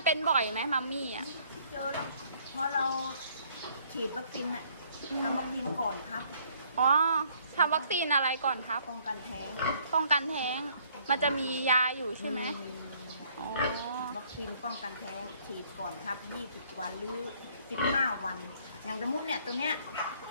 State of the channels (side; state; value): both; inverted; correlation -0.63